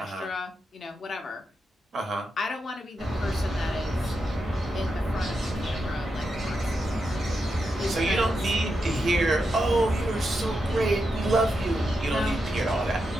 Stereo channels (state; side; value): normal; both; correlation 0.86